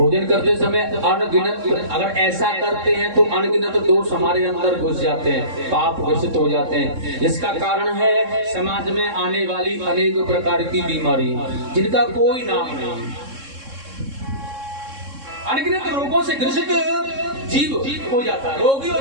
करते समय अनगिनत, अगर ऐसा करते हैं तो अनगिनत दोष हमारे अंदर घुस जाते हैं, पाप घोषित हो जाते हैं, जिसका कारण है समाज में आने वाली अनेक प्रकार की बीमारी जिनका कोई नाम नहीं। अनगिनत रोगों से ग्रसित जीव हो जाता है, रोगी हो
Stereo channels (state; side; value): late; left; 3.7 ms